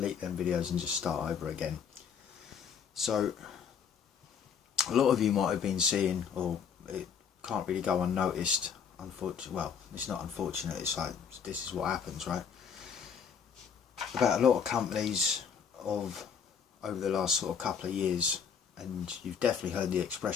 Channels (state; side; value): quieter; right; 7.0 dB